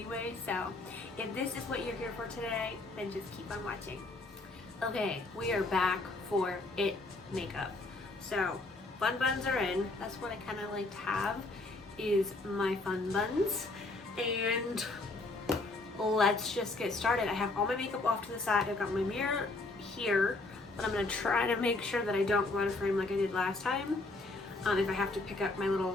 So if this is what you're here for today, then just keep on watching. Okay, we are back for it makeup. So fun buns are in. That's what I kind of like to have, is my fun buns. And let's just get started. I have all my makeup off to the side. I've got my mirror here, but I'm gonna try to make sure that I don't go out of frame like I did last time. If I have to pick up my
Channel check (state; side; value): quieter; right; 3.1 dB